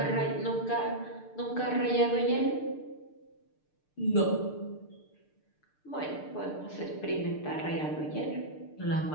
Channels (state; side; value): late; right; 6.7 ms